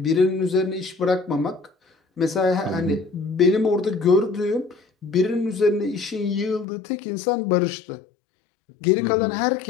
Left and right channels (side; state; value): right; drops out; at 6.7 s